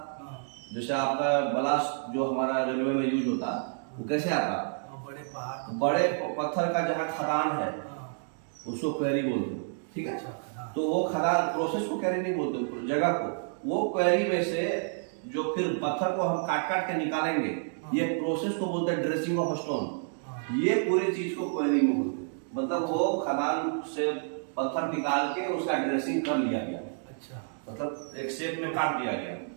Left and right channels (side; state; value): left; silent; digital silence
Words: जैसे आपका ब्लास्ट जो हमारा रेलवे में यूज होता, वो कैसे आता, बड़े पत्थर का जहाँ खदान है उसको क्वेरी बोलते, ठीक है। तो वो खदान प्रोसेस को क्वेरी नहीं बोलते, जगह को, वो क्वेरी में से जो फिर पत्थर को हम काट के निकालेंगे, ये प्रोसेस को बोलते हैं ड्रेसिंग ऑफ स्टोन। ये पूरी चीज को क्वेरी में बोलते हैं। मतलब वो खदान से पत्थर निकाल के उसका ड्रेसिंग कर लिया गया। अच्छा। मतलब एक शेप में काट दिया गया,